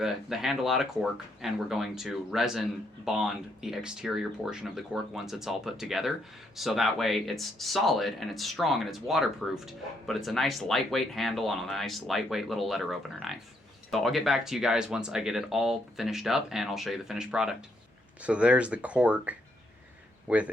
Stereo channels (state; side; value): normal; both; correlation 0.74